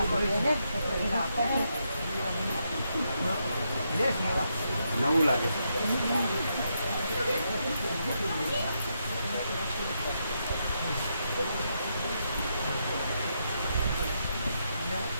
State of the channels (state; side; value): inverted; both; correlation -0.81